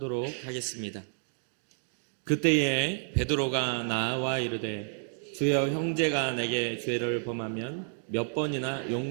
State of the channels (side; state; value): left; silent; 58 dB below the other